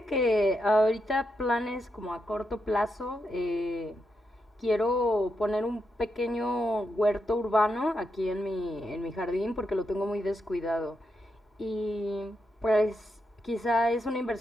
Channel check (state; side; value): normal; both; correlation 0.84